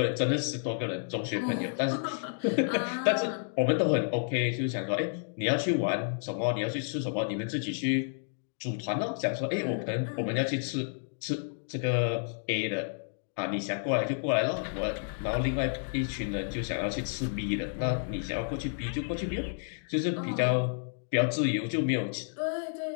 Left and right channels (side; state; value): right; silent; digital silence